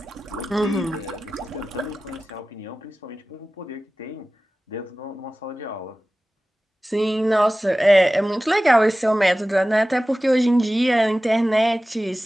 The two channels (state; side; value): normal; both; correlation 0.96